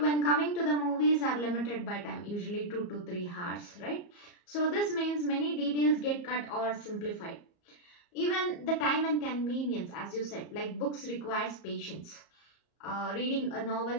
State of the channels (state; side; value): late; right; 34 ms